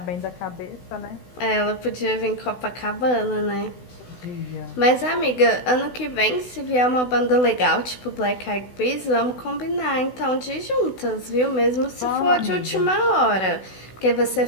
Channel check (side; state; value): right; late; 16 ms